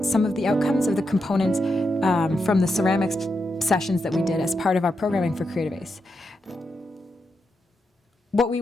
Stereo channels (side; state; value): both; normal; correlation 0.85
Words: some of the outcomes of the components from the ceramics sessions that we did as part of our programming for Creative Ace. What we